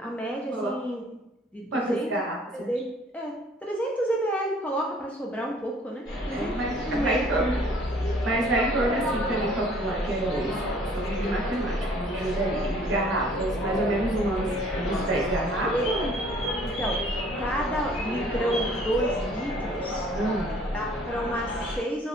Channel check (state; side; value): normal; both; correlation 0.56